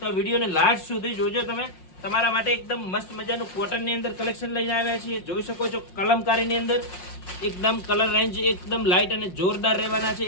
આ વિડીયોને લાસ્ટ સુધી જોજો તમે. તમારા માટે એકદમ મસ્ત મજાનું કોટનની અંદર કલેક્શન લઈને આવ્યા છીએ. જોઈ શકો છો કલમકારીની અંદર એકદમ કલર રેન્જ એકદમ લાઇટ અને જોરદાર રહેવાના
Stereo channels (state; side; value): late; right; 5.6 ms